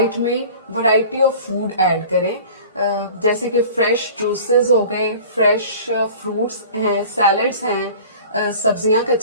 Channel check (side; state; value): both; inverted; correlation -0.43